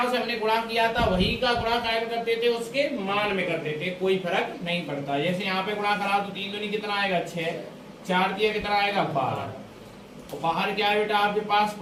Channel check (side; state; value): both; identical; correlation 1.00